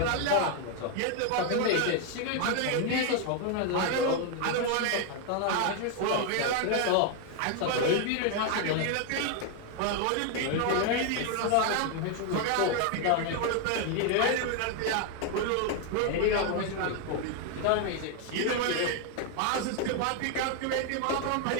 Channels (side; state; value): both; different; correlation 0.01